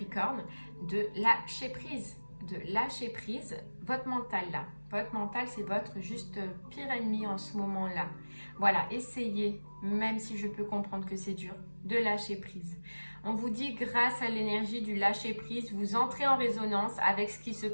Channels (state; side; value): inverted; both; correlation -1.00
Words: de lâcher prise. De lâcher prise votre mental là. Votre mental, c'est votre juste pire ennemi en ce moment-là. Voilà, essayez, même si je peux comprendre que c'est dur, de lâcher prise. On vous dit, grâce à l'énergie du lâcher prise, vous entrez en résonance avec ce qui se